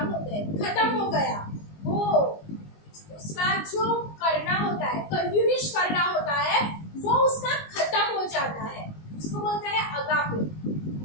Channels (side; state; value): right; late; 19 ms